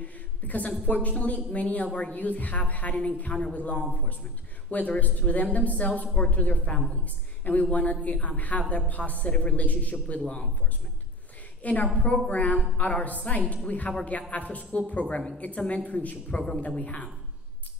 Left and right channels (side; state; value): both; normal; correlation 0.33